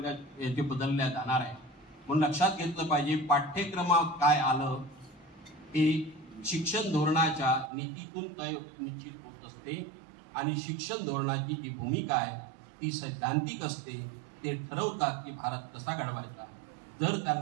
याचे बदलल्या जाणार आहे. म्हणून लक्षात घेतलं पाहिजे पाठ्यक्रमात काय आलं हे शिक्षण धोरणाच्या नीतीतून तय निश्चित होत असते आणि शिक्षण धोरणाची जी भूमिका आहे ती सैद्धांतिक असते. ते ठरवतात की भारत कसा घडवायचा. जर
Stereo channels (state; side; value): drops out; left; at 7.7 s